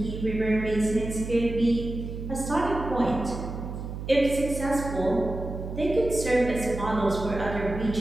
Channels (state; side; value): noise; right; hum, 7 dB below the sound